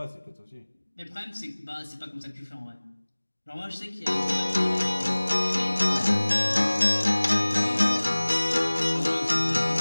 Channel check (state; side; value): inverted; both; correlation -1.00